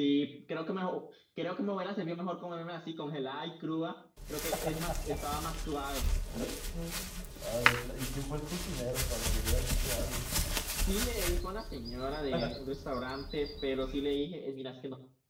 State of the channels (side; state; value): both; identical; correlation 1.00